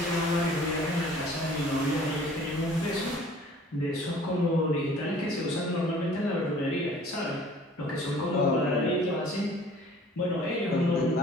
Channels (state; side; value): normal; both; correlation 0.51